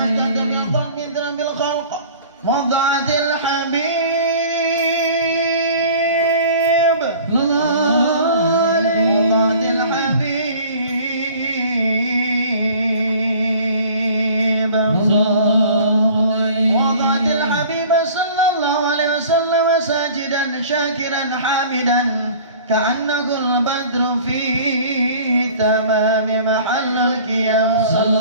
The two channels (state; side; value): inverted; both; correlation -0.46